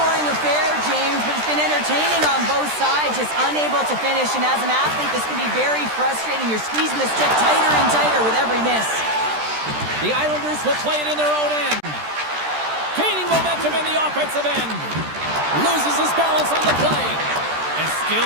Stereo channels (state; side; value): late; left; 13 ms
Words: affair, James, but it's been entertaining on both sides, just unable to finish. And as an athlete, this can be very frustrating. You're squeezing the stick tighter and tighter with every miss. The Islanders will play it in their own end. Gaining momentum in the offensive end. Loses his balance on the play. And